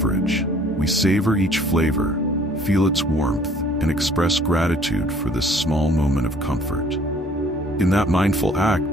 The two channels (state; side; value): normal; both; correlation 0.57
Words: We savor each flavor, feel its warmth, and express gratitude for this small moment of comfort. In that mindful